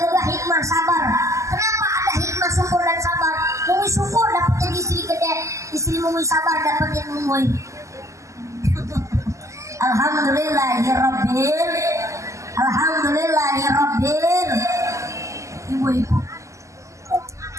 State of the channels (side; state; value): left; late; 0.15 ms